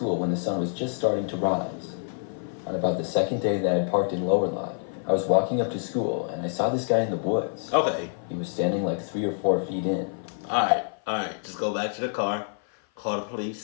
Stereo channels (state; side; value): silent; right; 55 dB below the other